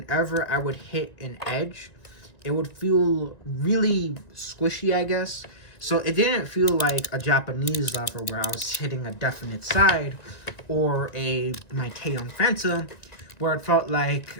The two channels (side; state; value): right; late; 1.9 ms